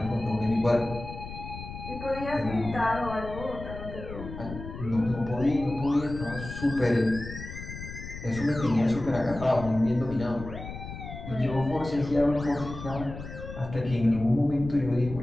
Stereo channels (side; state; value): left; noise; rumble, 10 dB below the sound